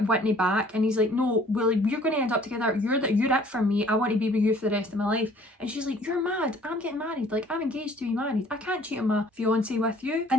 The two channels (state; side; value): normal; both; correlation 0.55